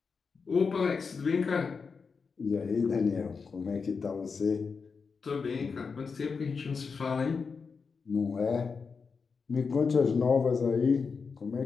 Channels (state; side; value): quieter; right; 5.2 dB